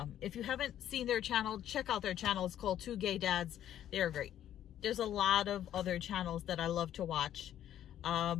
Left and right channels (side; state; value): right; quieter; 11.2 dB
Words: If you haven't seen their channel, check out their channel. It's called Two Gay Dads. They are great. There's a lot of other channels that I love to watch.